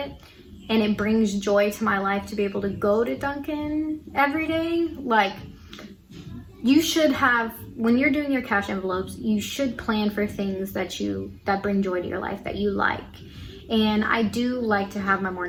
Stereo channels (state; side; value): identical; both; correlation 1.00